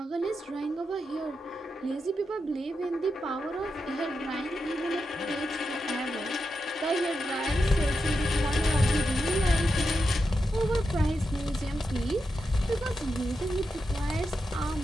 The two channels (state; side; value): normal; both; correlation 0.87